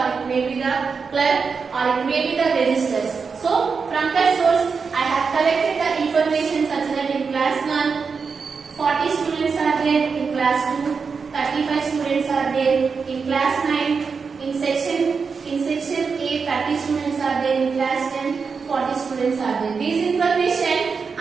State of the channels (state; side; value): quieter; left; 5.3 dB